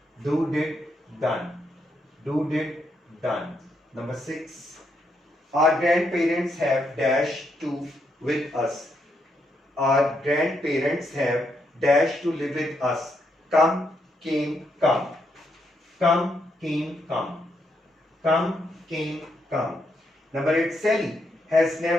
do, did, done. Do, did, done. Number 6. Our grandparents have dash to with us. Our grandparents have dash to live with us. Come, came, come. Come, came, come. Come, came, come. Number 8. Sally has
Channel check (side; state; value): both; normal; correlation 0.78